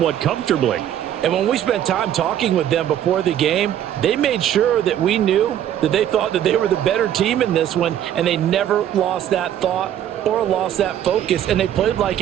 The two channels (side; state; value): left; quieter; 10.8 dB